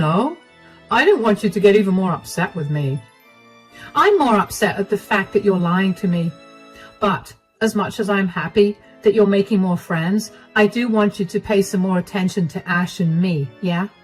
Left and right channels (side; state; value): both; identical; correlation 1.00